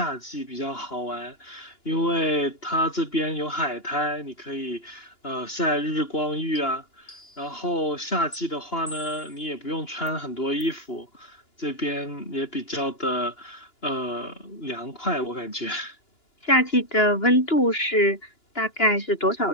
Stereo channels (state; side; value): late; right; 2.9 ms